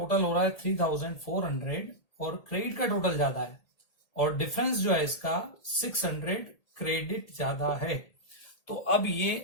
हो रहा है 3,400 और क्रेडिट का टोटल ज्यादा है और डिफरेंस जो है इसका 600 क्रेडिट ज्यादा है। तो अब ये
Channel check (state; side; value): late; right; 1.8 ms